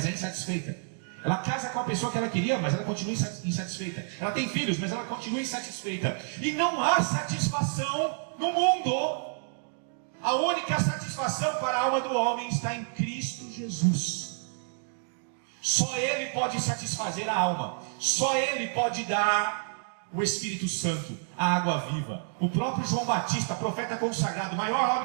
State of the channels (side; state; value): left; silent; digital silence